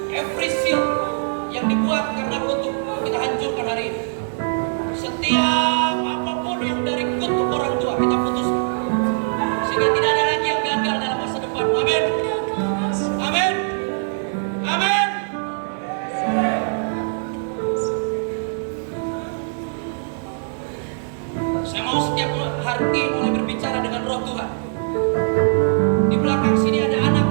Every seal yang dibuat karena kutuk kita hancurkan hari ini. Setiap apapun yang dari kutuk orang tua kita putus, sehingga tidak ada lagi yang gagal dalam masa depan. Amin. Amin. Amin. Saya mau setiap hati mulai berbicara dengan roh Tuhan. Di belakang sini ada anak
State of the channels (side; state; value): left; silent; digital silence